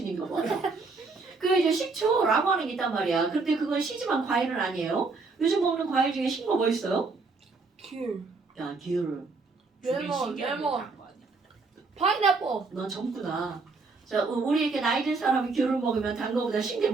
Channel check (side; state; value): left; quieter; 4.0 dB